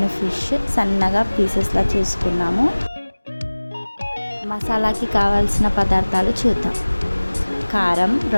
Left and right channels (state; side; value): inverted; both; correlation -1.00